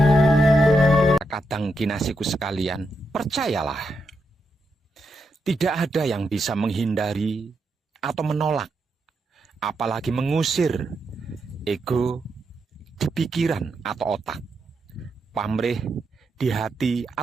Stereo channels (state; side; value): normal; both; correlation 0.83